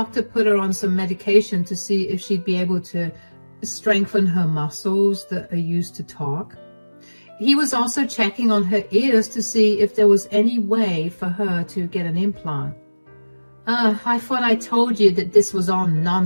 put her on some medication to see if she'd be able to strengthen her muscles that are used to talk. He was also checking on her ears to see if there was any way for her to get an implant. I thought I told you that this was all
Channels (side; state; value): both; inverted; correlation -1.00